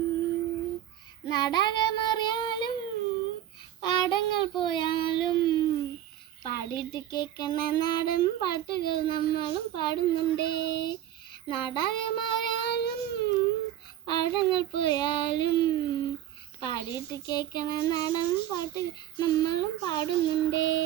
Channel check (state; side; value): quieter; left; 12.1 dB